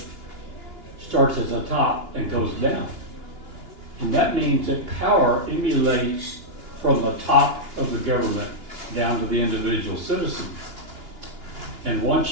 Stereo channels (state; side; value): late; left; 2.9 ms